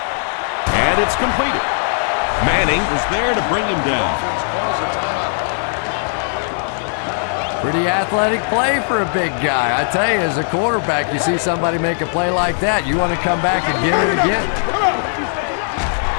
And it's completed. Manning was there to bring him down. Pretty athletic play for a big guy. I tell you, as a quarterback, you see somebody make a play like that, you want to come back and get it again.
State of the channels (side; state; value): right; silent; 66 dB below the other